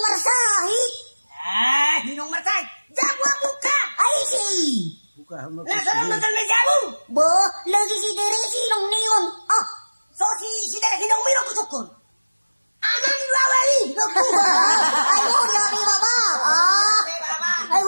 Hinong marsahi. Jabuan buka. Ai si. Buka. Nah sana betul bejaru. Bo. Lagi si Tere sinong niyon. So si Tere hinong miro kusukun. Aman lawali. Ay huri abi baba. Ay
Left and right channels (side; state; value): both; inverted; correlation -1.00